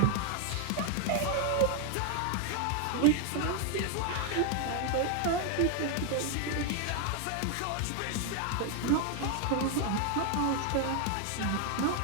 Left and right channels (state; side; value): different; both; correlation 0.00